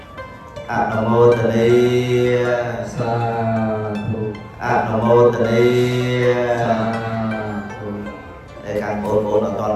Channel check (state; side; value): identical; both; correlation 1.00